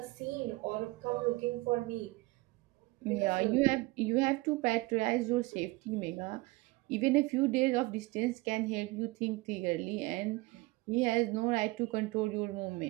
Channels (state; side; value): quieter; left; 22.3 dB